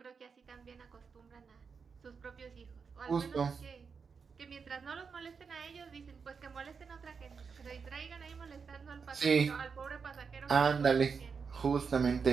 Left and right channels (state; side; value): quieter; left; 5.6 dB